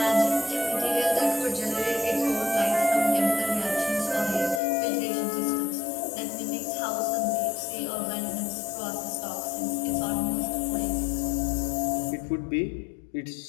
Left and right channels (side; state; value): right; drops out; at 4.6 s